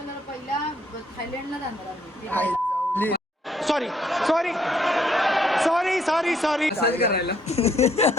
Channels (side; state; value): both; normal; correlation 0.69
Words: पहिला थायलंडला जाणार आम्ही. Sorry sorry sorry sorry sorry असंच करायला.